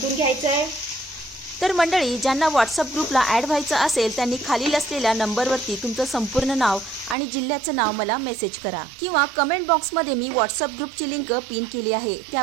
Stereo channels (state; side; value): drops out; left; at 7.2 s